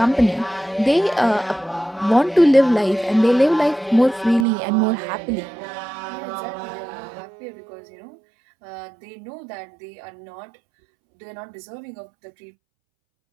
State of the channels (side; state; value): left; drops out; at 4.5 s